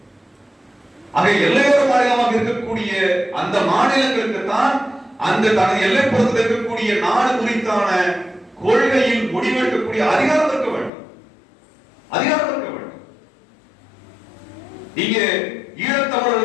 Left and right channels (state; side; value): drops out; right; at 10.9 s